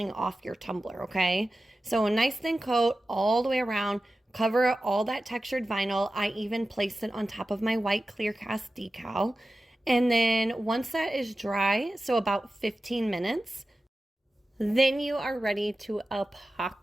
off your tumbler, okay? So a nice thin coat all the way around. Cover all that textured vinyl. I even placed it on top of my white clear cast decal. And then once that is dry, so about 15 minutes, then you are ready to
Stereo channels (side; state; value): both; normal; correlation 0.94